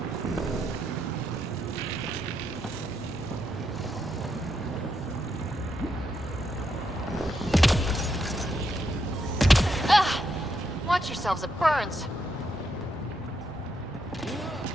Watch yourselves, it burns.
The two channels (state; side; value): normal; both; correlation 0.79